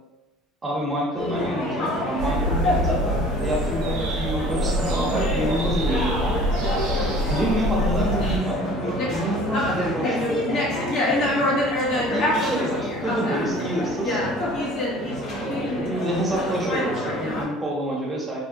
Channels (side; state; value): both; normal; correlation 0.49